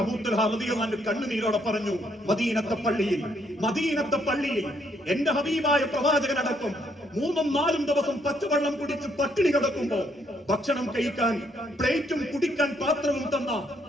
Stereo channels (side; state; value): both; normal; correlation 0.71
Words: അബൂ തുൽഹ റളിയല്ലാഹു അൻഹു കണ്ണുനീരോടെ പറഞ്ഞു, മദീനത്തെ പള്ളിയിൽ എന്റെ ഹബീബായ പ്രവാചകനടക്കം 3-4 ദിവസം പച്ചവെള്ളം കുടിച്ച് പട്ടിണി കിടക്കുമ്പോ ഭക്ഷണം കഴിക്കാൻ പ്ലേറ്റും കുടിക്കാൻ പാത്രവും തന്ന